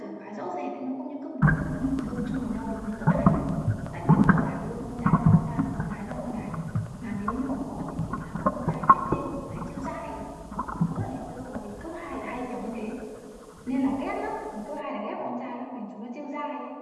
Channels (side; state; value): both; identical; correlation 1.00